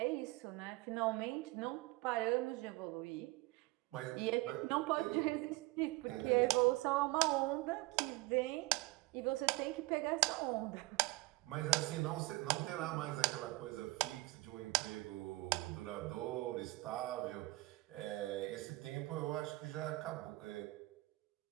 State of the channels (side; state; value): left; quieter; 21.6 dB